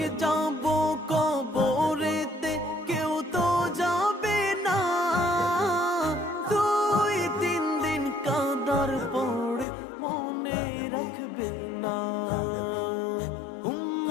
যাব কবরেতে কেউ তো যাবে না, 2-3 দিন কাঁদার পরে মনে রাখবে না।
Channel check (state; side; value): drops out; right; at 9.7 s